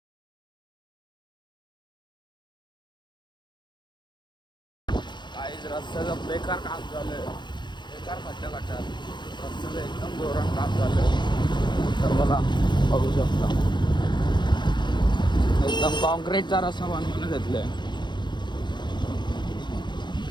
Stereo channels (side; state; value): right; late; 0.22 ms